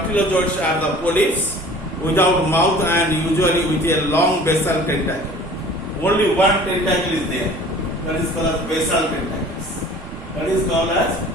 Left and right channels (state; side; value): normal; both; correlation 0.46